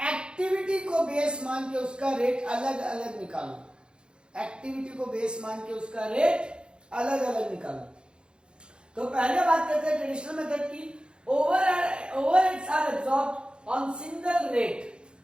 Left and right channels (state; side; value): late; left; 0.052 ms